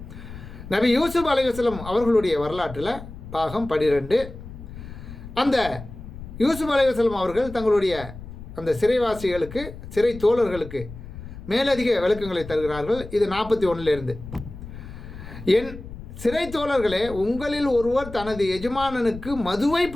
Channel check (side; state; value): left; noise; rumble, 13 dB below the sound